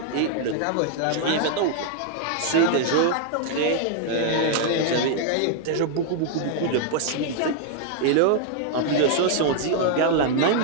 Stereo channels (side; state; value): both; different; correlation -0.01